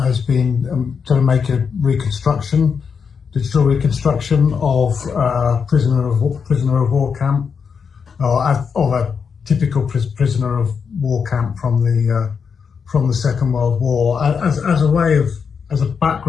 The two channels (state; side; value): quieter; right; 6.2 dB